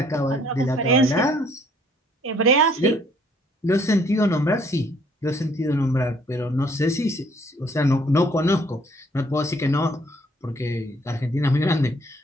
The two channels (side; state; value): both; normal; correlation 0.62